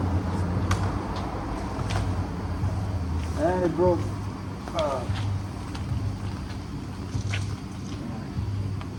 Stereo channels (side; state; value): both; identical; correlation 1.00